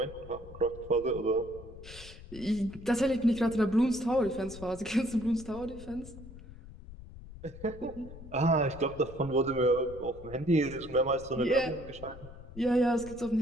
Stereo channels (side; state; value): left; noise; rumble, 15 dB below the sound